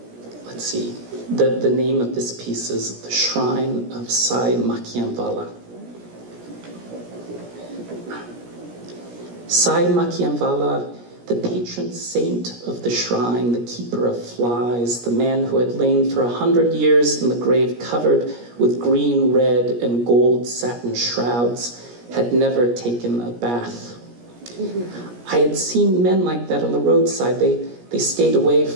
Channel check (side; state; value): left; late; 17 ms